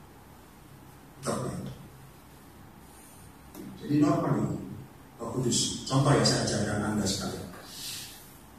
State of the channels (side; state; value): both; identical; correlation 1.00